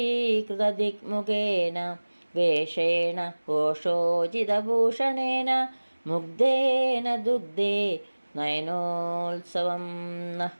വേഷേണ ഘോഷോചിതഭൂഷണേന മുഗ്ധേന ദുഗ്ധേ നയനോത്സവം.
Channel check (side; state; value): both; inverted; correlation -1.00